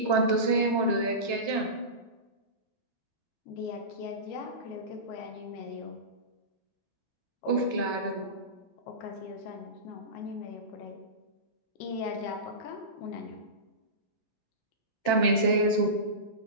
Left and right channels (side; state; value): right; late; 7.5 ms